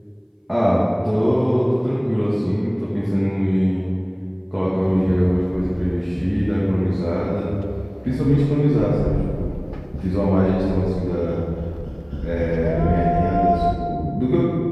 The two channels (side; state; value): both; identical; correlation 1.00